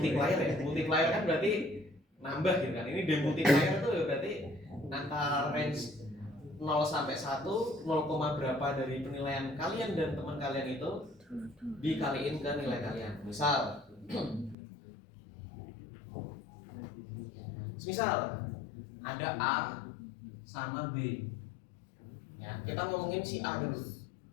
ya. Multiplier kan berarti nambah gitu kan. Ini demultiplier itu berarti antara range 0 sampai 1, 0, berapa dari penilaian kalian dan teman kalian itu dikaliin ke nilai kalian. Misal ada A sama B. Ya, kita ngomongin si A dulu.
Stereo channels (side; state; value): right; drops out; at 14.6 s